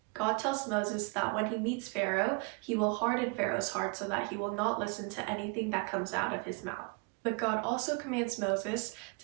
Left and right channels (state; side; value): quieter; left; 31.2 dB